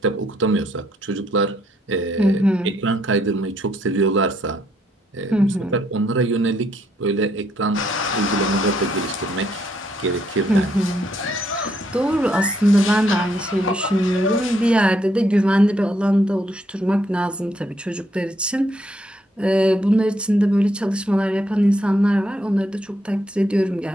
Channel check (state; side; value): normal; both; correlation 0.73